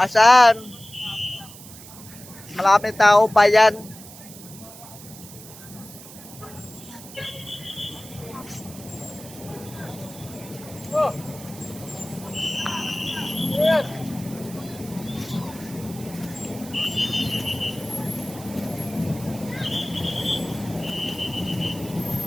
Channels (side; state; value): right; noise; hiss, 16 dB below the sound